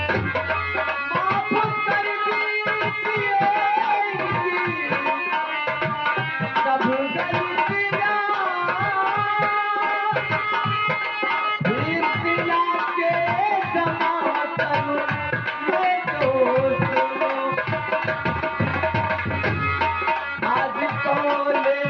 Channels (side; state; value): both; identical; correlation 1.00